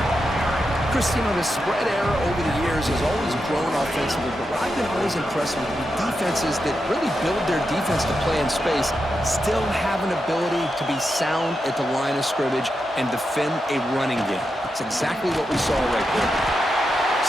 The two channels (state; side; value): normal; both; correlation 0.87